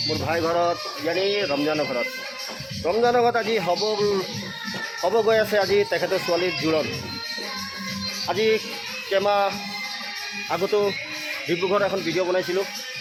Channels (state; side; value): identical; both; correlation 1.00